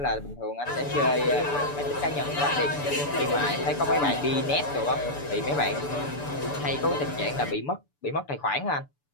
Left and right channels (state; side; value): late; right; 6.9 ms